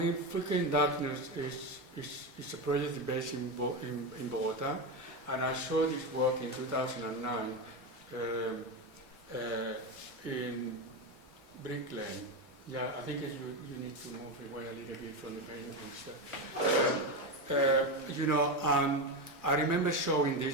Freaking Darkness is a project based in Bogota, and I saw this work in 2009 in Brick Lane. Yeah, I think you need to move away a little bit from the paintings. And I remember showing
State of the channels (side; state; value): both; normal; correlation 0.15